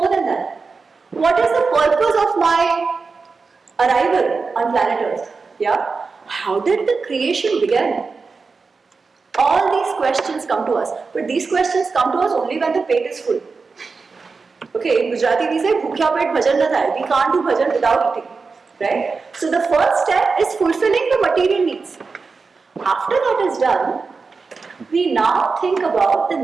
than that? What is the purpose of my arrival on planet Earth? Yeah? How did the creation begin? All these questions come to us. But these questions come to us only when the pet is full. Okay, in Gujarati we say, bhukya pet bhajan na thai. We can't do bhajan without eating. Right? So the first step is fulfilling the material needs. After that is done, we now think about the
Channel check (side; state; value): left; quieter; 4.5 dB